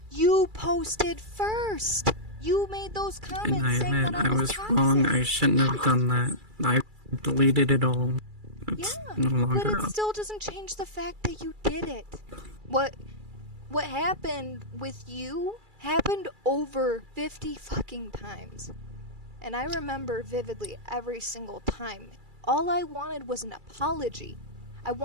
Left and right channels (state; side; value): late; left; 2.3 ms